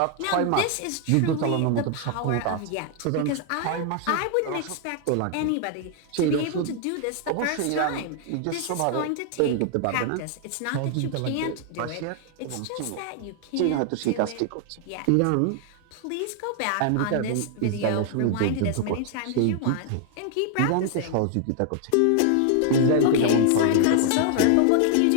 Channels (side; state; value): both; different; correlation 0.00